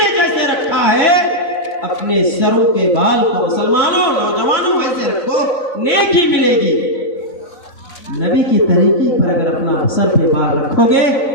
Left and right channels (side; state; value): right; late; 3.5 ms